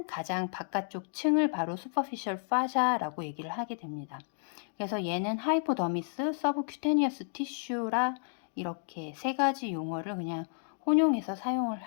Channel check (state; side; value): silent; right; digital silence